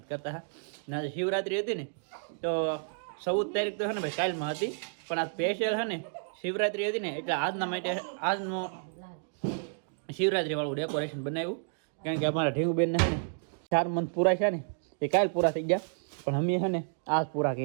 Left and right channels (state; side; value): silent; left; digital silence